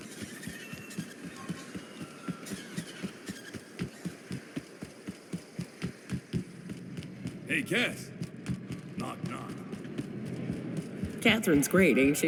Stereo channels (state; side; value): identical; both; correlation 1.00